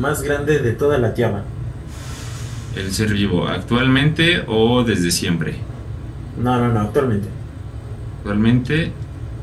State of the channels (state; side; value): identical; both; correlation 1.00